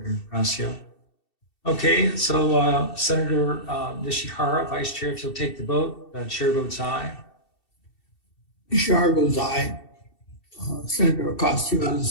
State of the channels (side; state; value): right; late; 2.7 ms